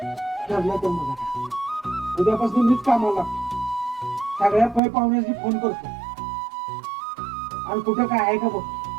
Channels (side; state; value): left; drops out; at 4.8 s